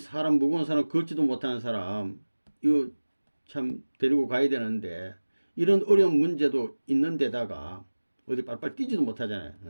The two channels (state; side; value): inverted; both; correlation -1.00